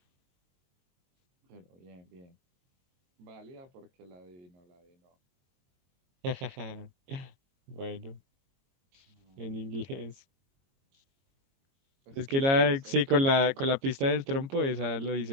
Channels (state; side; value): late; left; 22 ms